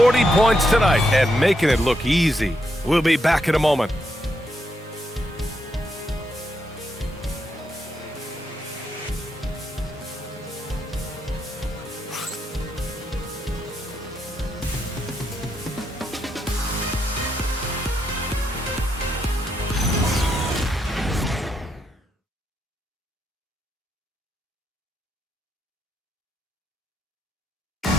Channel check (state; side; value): normal; both; correlation 0.80